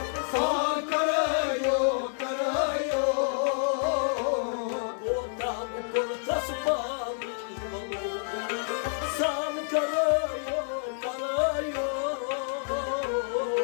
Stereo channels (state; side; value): silent; right; digital silence